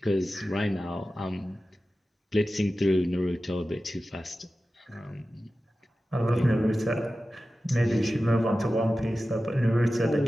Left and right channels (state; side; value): normal; both; correlation 0.94